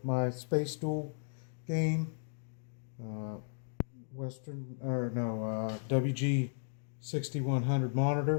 my Space Duel game. Uh, WG6100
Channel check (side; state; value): right; silent; digital silence